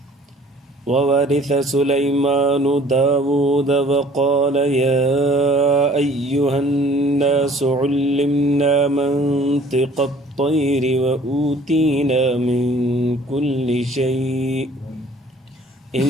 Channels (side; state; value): both; normal; correlation 0.53